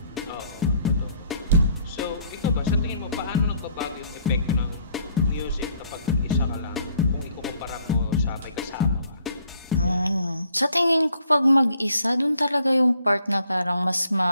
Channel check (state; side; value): inverted; both; correlation -0.65